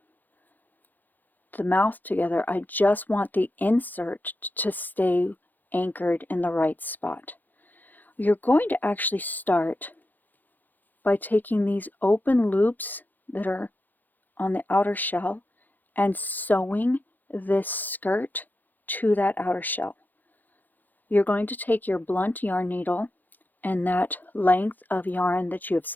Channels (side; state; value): right; late; 0.089 ms